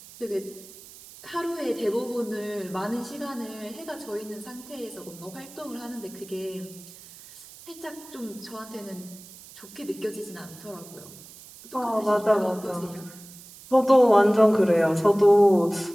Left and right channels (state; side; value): noise; right; hiss, 19 dB below the sound